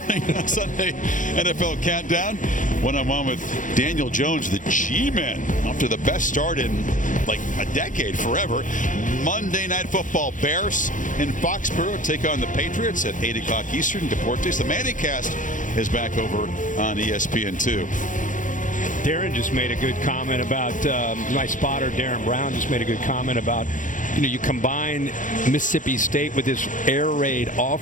on Sunday NFL Countdown. One-on-one with Daniel Jones, the G-Men. After the best start in like a decade, forever. Monday Night Football. Bears in Foxborough take on the Patriots at 8 o'clock Eastern. Deportes. The Manningcast is back over on ESPN2. Darren just made a good comment about, my spotter, Darren Brown, just made a good comment about, you combine Mississippi State with this air raid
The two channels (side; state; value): right; late; 0.38 ms